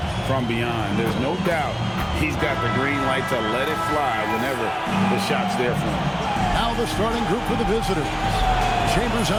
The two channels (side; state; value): both; identical; correlation 1.00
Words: from beyond. There's no doubt he's got the green light to let it fly whenever the shot's there for him. Now the starting group for the visitors. Chambers